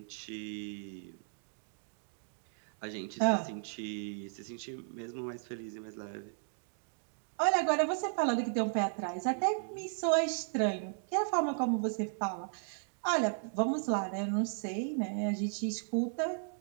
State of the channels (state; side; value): silent; left; 54 dB below the other